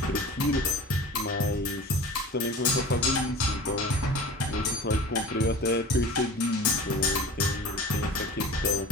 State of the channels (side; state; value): both; normal; correlation 0.38